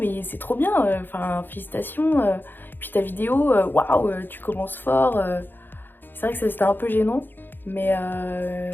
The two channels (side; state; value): right; late; 0.095 ms